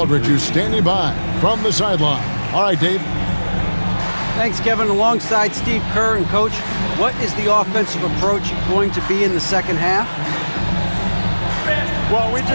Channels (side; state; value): both; inverted; correlation -1.00